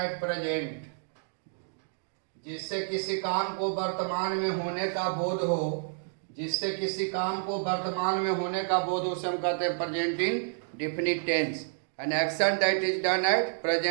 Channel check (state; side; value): silent; left; digital silence